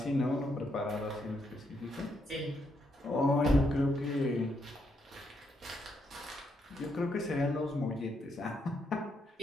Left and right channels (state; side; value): normal; both; correlation 0.77